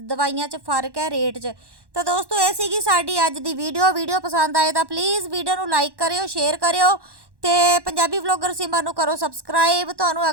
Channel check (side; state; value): left; late; 1.1 ms